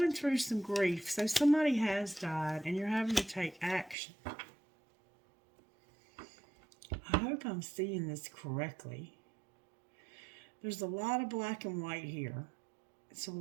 through some grief. So somebody has died and you're having to take action. I hope I'm seeing this correctly. There's a lot of black and white here. It's a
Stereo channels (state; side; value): drops out; left; at 4.0 s